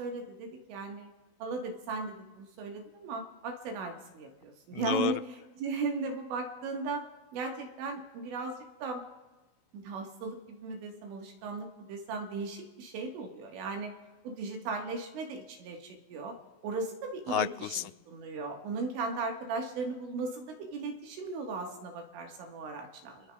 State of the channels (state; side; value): late; left; 16 ms